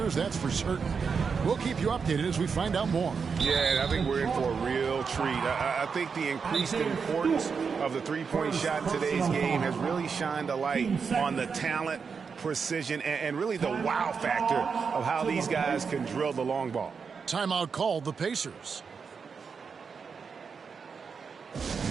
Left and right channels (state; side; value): quieter; left; 5.7 dB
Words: that's for certain. We'll keep you updated as we find out more. Yeah, I think we're in for a real treat. I think the increased importance of the three-point shot in today's game has really shined a light on the talent, precision, and really the wow factor of how these guys can drill the long ball. Timeout called the Pacers. The